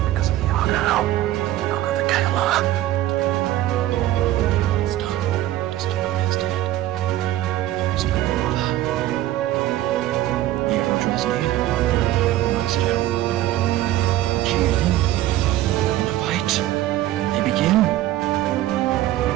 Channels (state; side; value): quieter; left; 14.5 dB